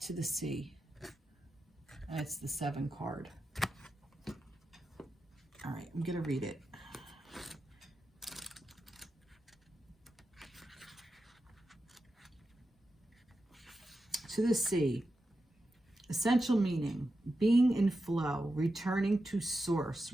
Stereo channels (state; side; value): normal; both; correlation 0.90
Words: To the sea. And it's the 7 card. All right, I'm going to read it. To the sea. Essential meaning, being in flow, returning to source,